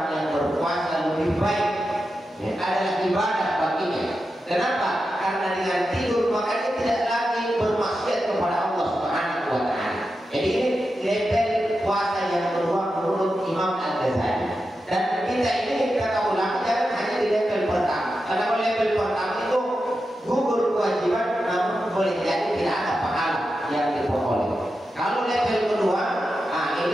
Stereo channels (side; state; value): both; normal; correlation 0.90